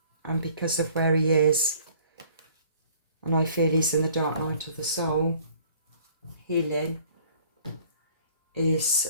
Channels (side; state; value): both; inverted; correlation -0.55